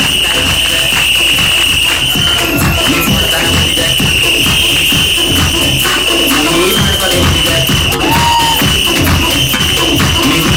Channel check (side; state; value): left; noise; hum, 13 dB below the sound